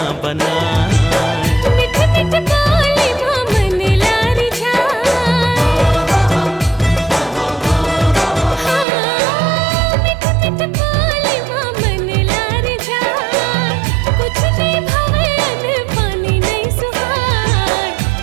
बनाए। मिठ मिठ बोली मन लारी जा, मिठ मिठ बोली मन लारी जा। कुछ भी भवन पानी नहीं सुहाय,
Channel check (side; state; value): left; drops out; at 8.8 s